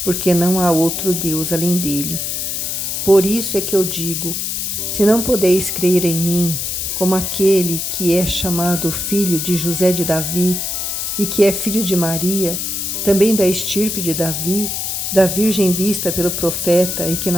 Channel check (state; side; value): noise; left; hiss, 2 dB below the sound